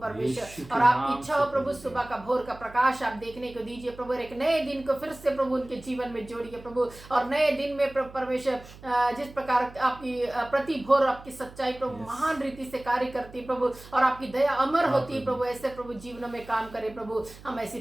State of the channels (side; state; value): right; noise; hum, 19 dB below the sound